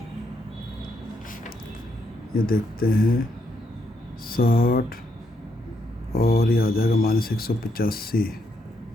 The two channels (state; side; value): normal; both; correlation 0.77